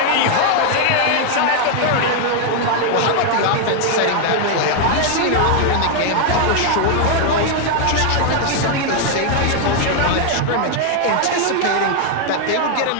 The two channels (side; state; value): both; different; correlation 0.00